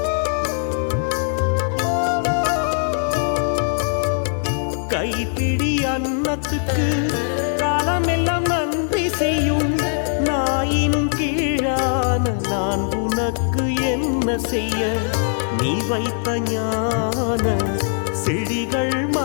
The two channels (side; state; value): right; silent; digital silence